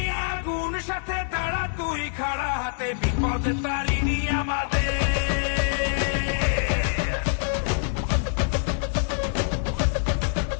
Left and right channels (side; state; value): right; silent; 57 dB below the other